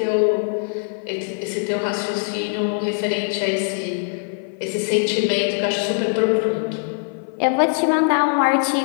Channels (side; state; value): right; silent; 57 dB below the other